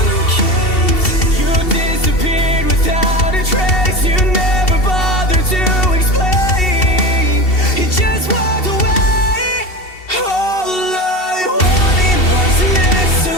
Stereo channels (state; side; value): late; right; 2.7 ms